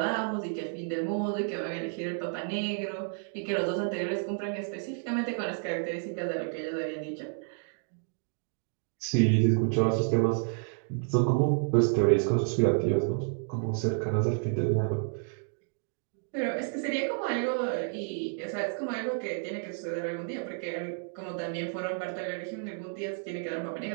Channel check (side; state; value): left; silent; 57 dB below the other